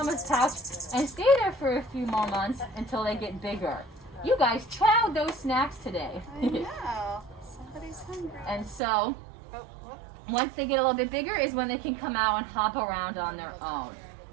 pouch and stay there for a few more months until they get bigger. You guys chowed those snacks today. I know. Somebody's hungry. And so, once they get a little bit bigger is when they can come out and hop around on their own.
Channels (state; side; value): drops out; left; at 8.8 s